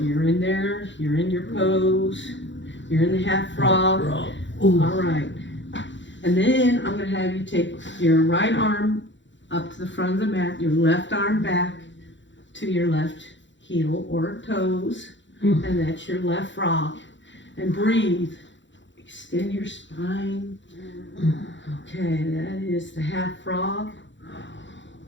you're in there. You're in your pose. You're in the half frog. All right. And then I'm going to have you take your right arm up to the front of the mat, your left arm back to your left heel or toes, and that's your left frog. And breathe. Extend your spine. Okay, that is the half frog.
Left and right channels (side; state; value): right; late; 0.54 ms